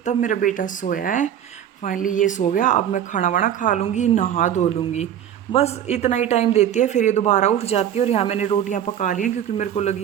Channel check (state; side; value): quieter; left; 10.0 dB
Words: तब मेरा बेटा सोया है। फाइनली ये सो गया। अब मैं खाना वाना खा लूँगी, नहा धो लूँगी, बस इतना ही टाइम देती है, फिर ये दोबारा उठ जाती है। और यहाँ मैंने रोटियाँ पका ली हैं क्योंकि मेरे को